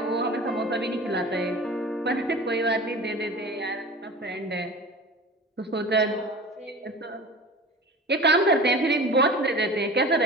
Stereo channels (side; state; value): both; normal; correlation 0.37